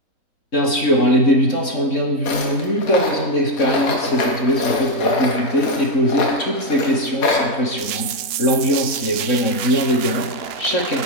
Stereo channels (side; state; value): right; late; 3.6 ms